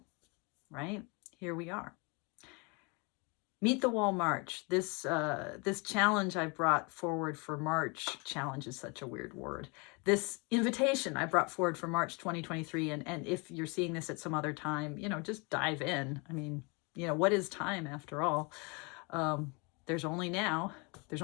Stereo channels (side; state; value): right; quieter; 30.7 dB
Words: right, here we are. Meet the Wall March. This challenge I brought forward for March, challenge is such a weird word. This invitation I brought forward for March 2023. And if you're seeing this at some other time, you know, just dive in. I mean, you know, what is time after all? There's only now. There's